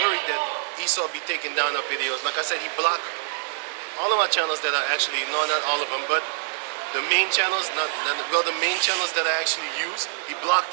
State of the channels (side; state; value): left; silent; digital silence